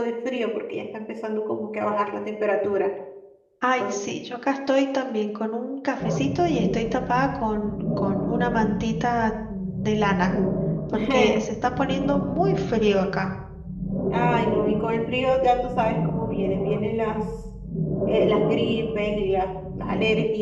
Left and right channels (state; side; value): identical; both; correlation 1.00